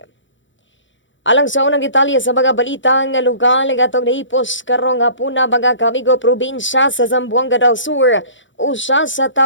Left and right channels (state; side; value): late; right; 0.55 ms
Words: Alang sa unang detalye sa mga balitang lugar nga atong nahipos karong hapuna mga kamigo probinsya sa Zamboanga del Sur, usa sa